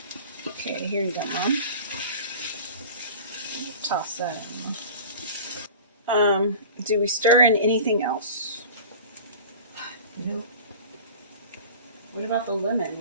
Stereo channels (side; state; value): both; inverted; correlation -0.38